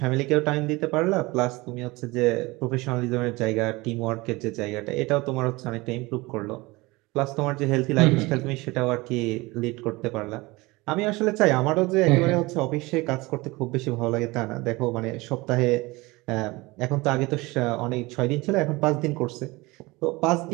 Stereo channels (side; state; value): left; quieter; 22.5 dB